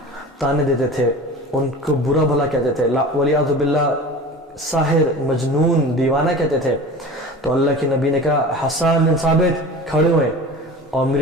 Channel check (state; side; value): normal; both; correlation 0.36